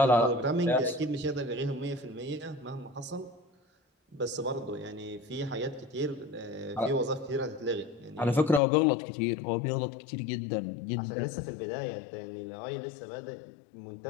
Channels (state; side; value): drops out; right; at 8.6 s